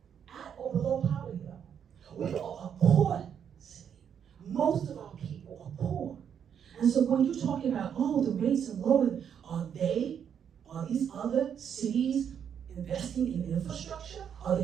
At or below poverty level. We are a poor city. Most of our people are poor. And so when you're talking about, oh, the rates are lower, are these other cities investing in infrastructure? Are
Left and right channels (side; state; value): left; quieter; 8.2 dB